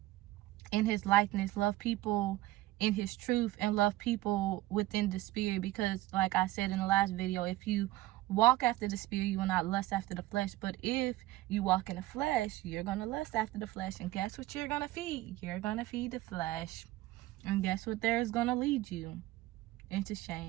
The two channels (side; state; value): left; quieter; 17.0 dB